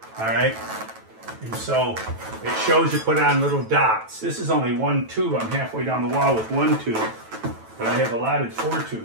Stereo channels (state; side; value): late; left; 9.1 ms